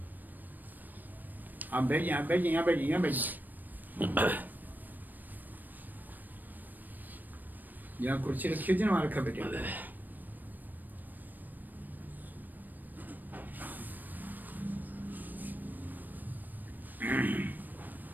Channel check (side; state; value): left; late; 0.088 ms